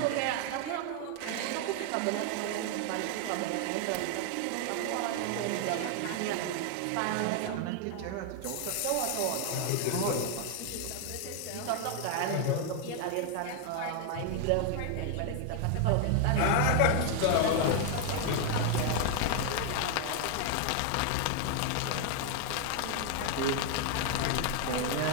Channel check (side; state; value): both; different; correlation 0.00